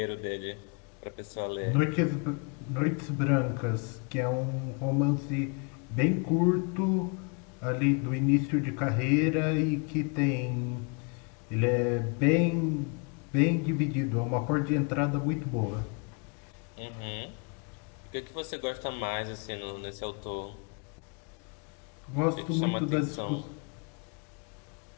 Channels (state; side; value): quieter; right; 36.4 dB